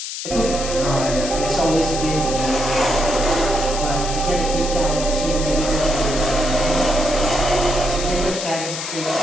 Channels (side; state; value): left; noise; hiss, 7 dB below the sound